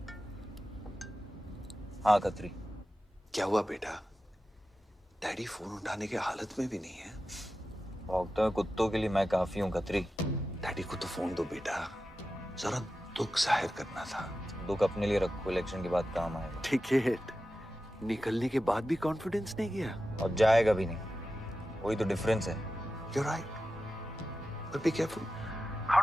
हाँ खत्री। क्या हुआ बेटा? डैडी फोन उठाने की हालत में भी नहीं है। भौंकते हुए कुत्तों के लिए मैं काफी हूँ खत्री। डैडी को तो फोन दो बेटा, जरा दुख जाहिर करना था। दुख अपने लिए रखो, इलेक्शन के बाद काम आएगा। टिकट निकलने के बाद भी कॉन्फिडेंस नहीं गया और जाएगा भी नहीं, वही तो डिफरेंस है। You're right, but be careful.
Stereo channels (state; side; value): normal; both; correlation 0.93